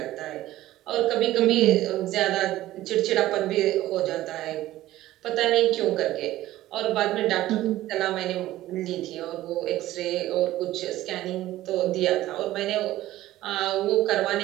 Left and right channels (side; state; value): left; quieter; 15.2 dB